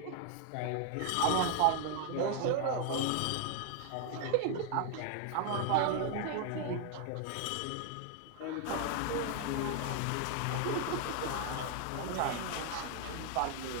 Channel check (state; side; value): different; both; correlation 0.00